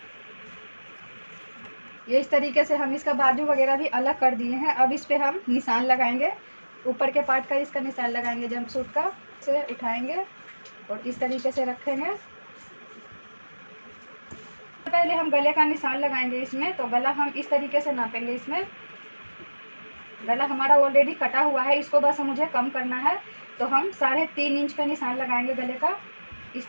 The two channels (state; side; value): inverted; both; correlation -1.00